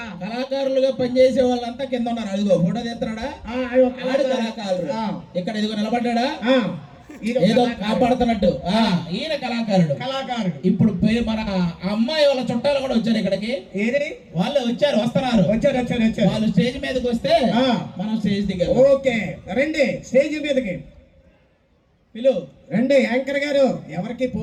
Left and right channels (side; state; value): both; identical; correlation 1.00